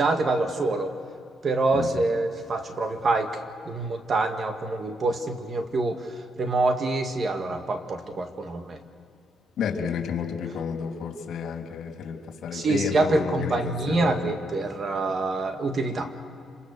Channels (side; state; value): both; normal; correlation 0.78